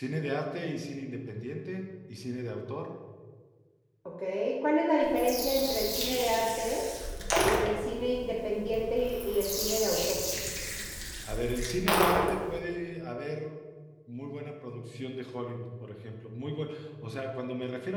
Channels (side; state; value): both; identical; correlation 1.00